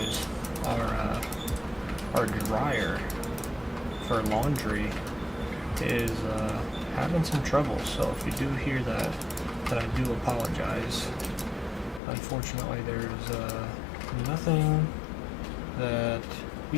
Our dryer for laundry is having some trouble, so if you do hear that, then I do apologize. Unfortunately, there's nothing that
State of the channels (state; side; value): drops out; right; at 12.0 s